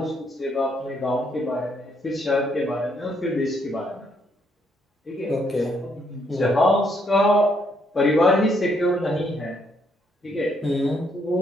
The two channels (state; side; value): normal; both; correlation 0.73